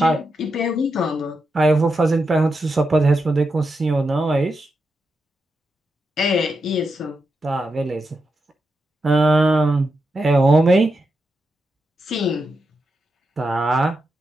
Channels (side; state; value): both; normal; correlation 0.86